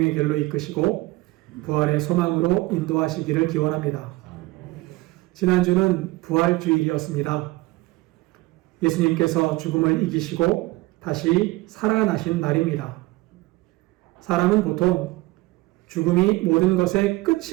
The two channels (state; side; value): quieter; left; 20.7 dB